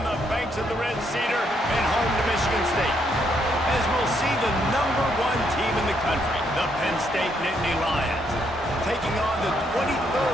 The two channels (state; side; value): normal; both; correlation 0.74